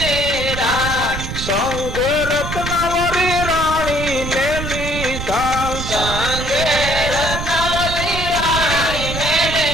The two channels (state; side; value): noise; right; rumble, 5 dB below the sound